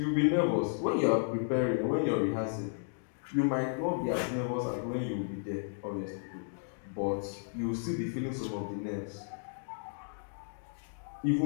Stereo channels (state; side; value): silent; right; digital silence